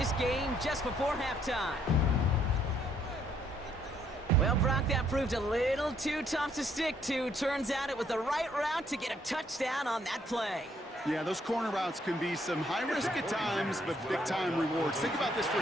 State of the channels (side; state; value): both; normal; correlation 0.69